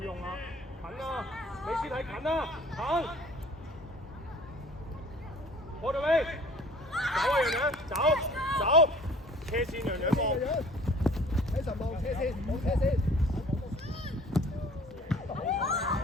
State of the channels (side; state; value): both; normal; correlation 0.50